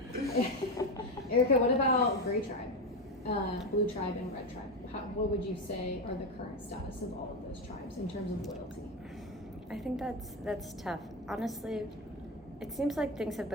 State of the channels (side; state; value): both; normal; correlation 0.15